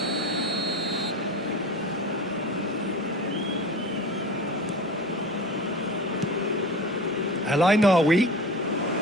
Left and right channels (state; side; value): normal; both; correlation 0.33